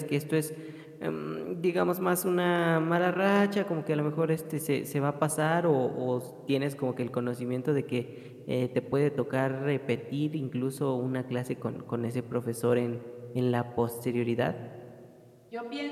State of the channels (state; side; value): identical; both; correlation 1.00